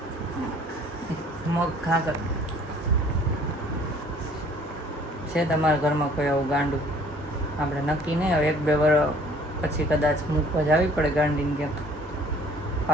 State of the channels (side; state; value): both; normal; correlation 0.55